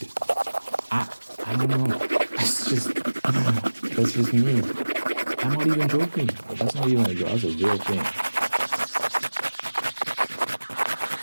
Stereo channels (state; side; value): inverted; both; correlation -1.00